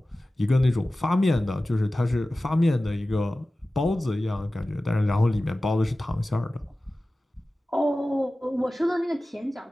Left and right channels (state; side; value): normal; both; correlation 0.96